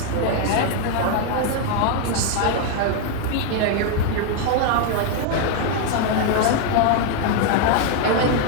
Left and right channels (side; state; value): both; different; correlation 0.01